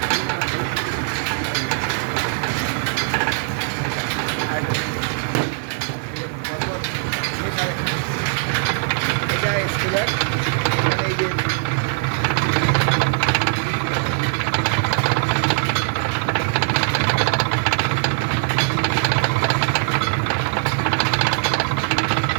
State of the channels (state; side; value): silent; left; 55 dB below the other